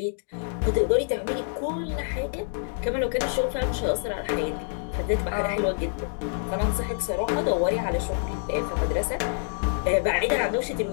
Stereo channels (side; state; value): right; silent; digital silence